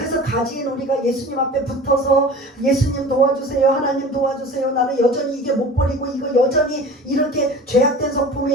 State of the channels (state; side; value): normal; both; correlation 0.39